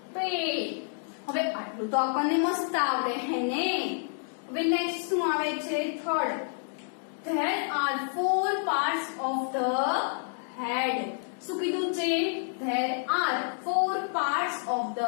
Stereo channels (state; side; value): silent; right; digital silence